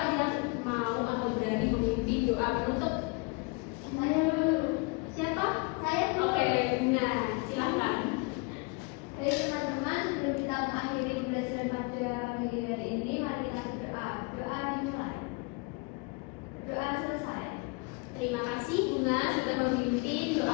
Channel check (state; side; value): quieter; right; 28.5 dB